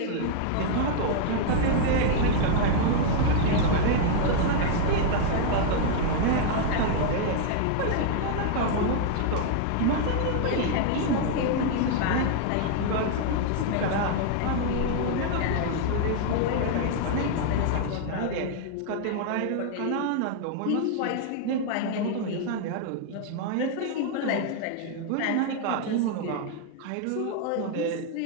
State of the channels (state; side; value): different; both; correlation 0.00